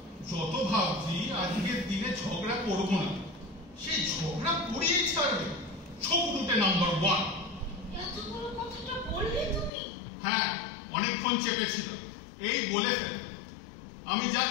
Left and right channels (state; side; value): drops out; right; at 9.7 s